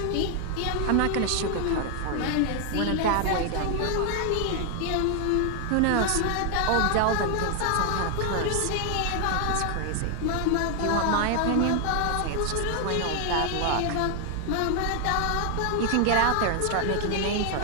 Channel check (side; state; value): both; different; correlation 0.00